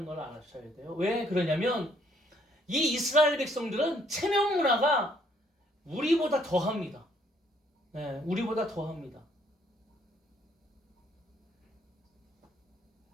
걸 알아셔야 돼요. 왜 그러냐면 이 이스라엘 백성들은 체면 문화가 우리보다 더합니다. 우리보다 더합니다.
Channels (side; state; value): both; normal; correlation 0.66